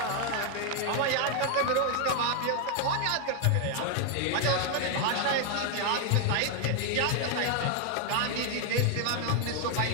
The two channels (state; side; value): different; both; correlation 0.01